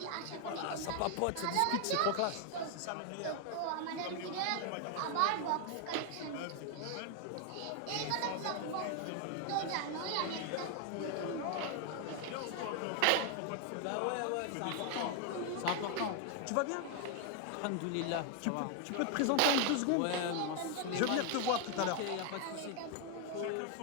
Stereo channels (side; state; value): both; different; correlation 0.00